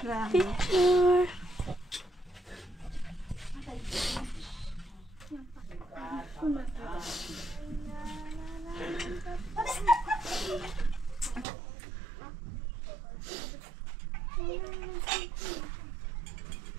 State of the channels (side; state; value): left; drops out; at 11.5 s